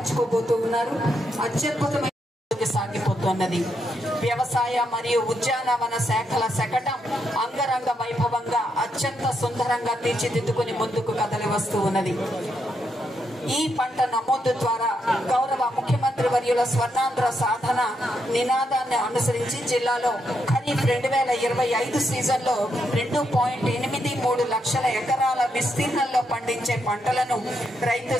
ఉన్నారు. అత్యద్భుతమైన సాగిపోతున్నది. వ్యవసాయ మరియు ఉద్యానవన శాఖల శకటం అంగరంగ వైభవంగా అత్యంత సుందరంగా తీర్చిదిద్దుకుని ముందుకు కదలి వస్తూ ఉన్నది. ఈ పంట నమోదు ద్వారా గౌరవ ముఖ్యమంత్రి వర్యుల స్వర్ణాంధ్ర సాధన నినాదాన్ని అనుసరించి జిల్లాలో ఖరీఫ్ 2025 సీజన్లో 2.83 లక్షల ఎకరాల విస్తీర్ణంలో పండించే పంటలను రైతు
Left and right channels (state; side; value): normal; both; correlation 0.80